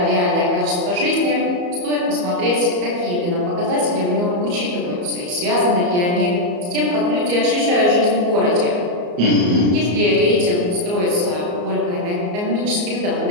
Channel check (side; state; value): left; late; 34 ms